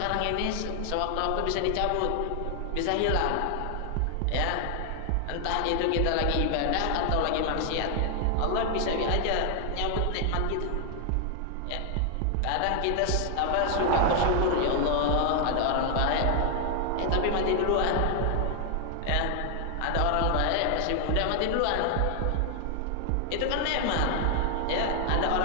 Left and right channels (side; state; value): both; different; correlation 0.00